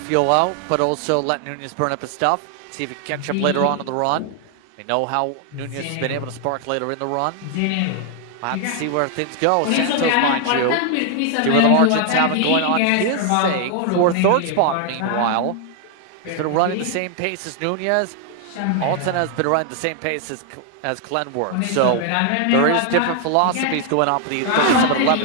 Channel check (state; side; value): different; both; correlation 0.00